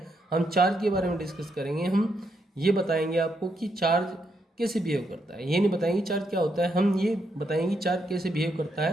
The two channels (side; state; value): both; normal; correlation 0.79